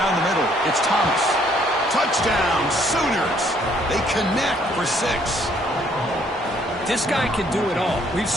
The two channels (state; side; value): normal; both; correlation 0.65